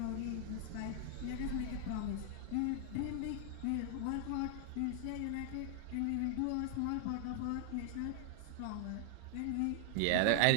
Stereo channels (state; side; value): different; both; correlation 0.00